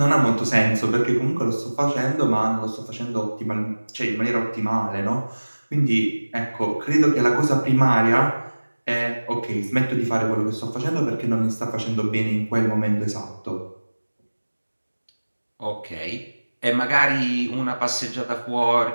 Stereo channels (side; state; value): both; inverted; correlation -1.00